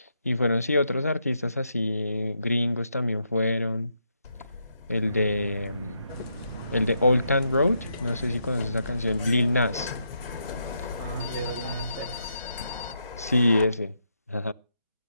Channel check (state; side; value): inverted; both; correlation -0.80